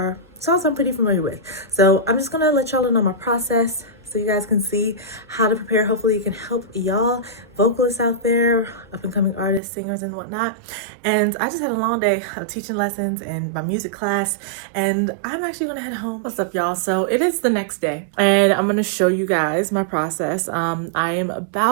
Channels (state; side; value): drops out; left; at 9.6 s